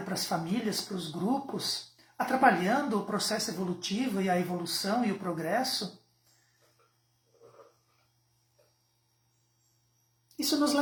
para as famílias, para os grupos, atrapalhando o processo evolutivo e a evolução e o progresso. Isso nos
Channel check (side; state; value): both; identical; correlation 1.00